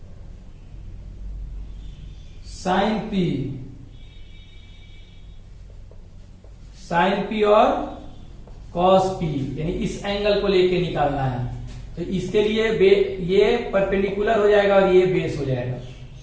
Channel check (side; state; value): both; identical; correlation 1.00